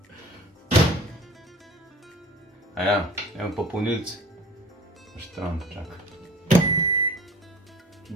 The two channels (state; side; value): normal; both; correlation 0.43